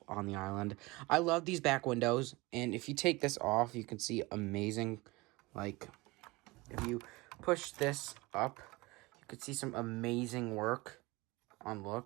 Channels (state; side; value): quieter; left; 22.8 dB